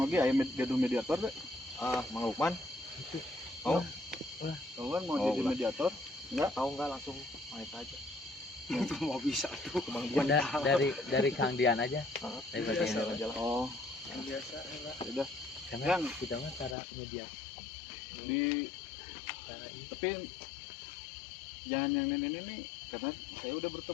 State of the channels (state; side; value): drops out; right; at 16.8 s